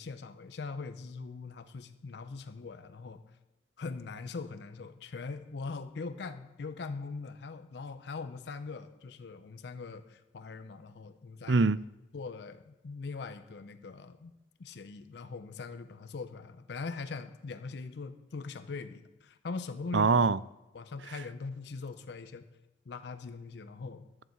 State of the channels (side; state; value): both; normal; correlation 0.25